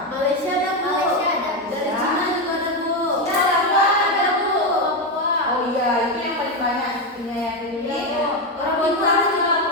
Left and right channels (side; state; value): both; normal; correlation 0.10